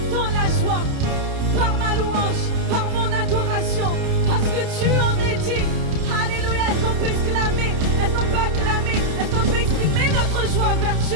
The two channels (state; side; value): late; left; 30 ms